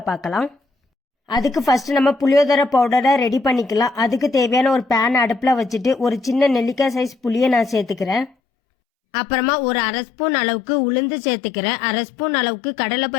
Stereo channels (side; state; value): right; drops out; at 8.3 s